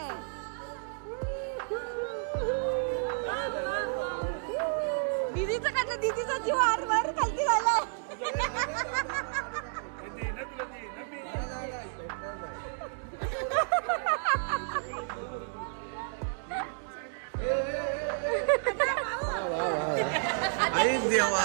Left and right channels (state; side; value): silent; left; 57 dB below the other